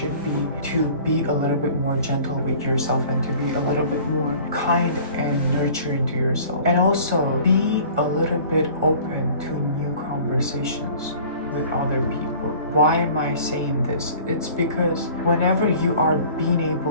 be to be a little bit more gentle with yourself, and to be a little bit more kind and nurturing to yourself. And also be a little bit open to new conversations with other people. Why am I saying this? It's because whenever you are being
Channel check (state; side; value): inverted; both; correlation -0.47